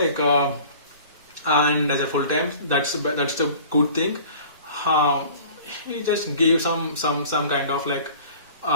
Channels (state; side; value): inverted; both; correlation -0.45